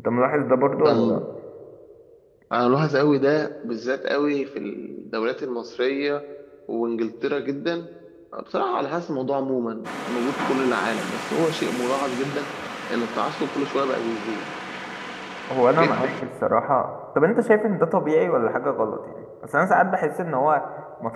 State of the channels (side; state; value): both; identical; correlation 1.00